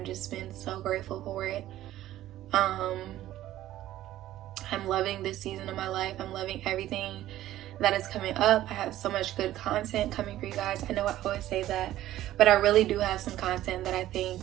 just been so grateful for it. I'm loving this season of my life. I'm loving everything that is coming up. I have so much good content coming for you guys. I know I always say that, but I really do have some content that I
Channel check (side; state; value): left; quieter; 13.9 dB